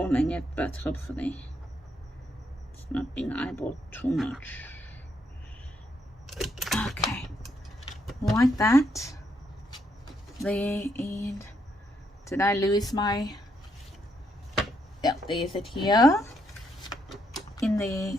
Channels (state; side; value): normal; both; correlation 0.76